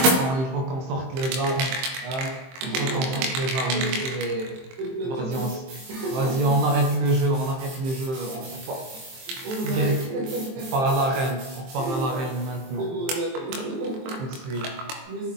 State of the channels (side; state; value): left; late; 23 ms